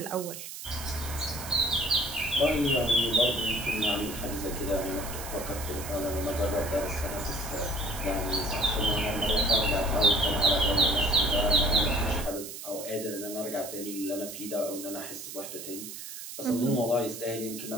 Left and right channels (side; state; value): right; noise; hiss, 10 dB below the sound